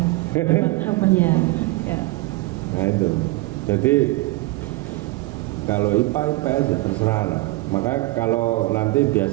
Iya. Ya. Nah itu. Jadi kalau IPA IPS ya terserah lah. Maka kalau nanti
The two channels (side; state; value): left; quieter; 21.1 dB